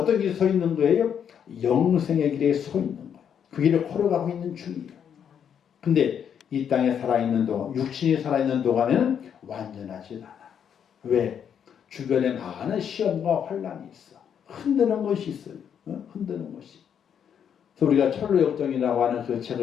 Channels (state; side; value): quieter; right; 8.2 dB